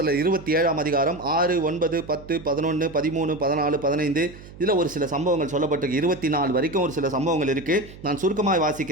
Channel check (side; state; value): right; noise; hum, 18 dB below the sound